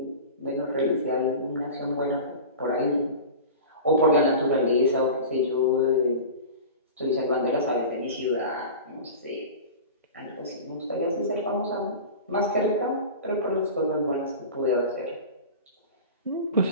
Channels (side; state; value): both; inverted; correlation -0.33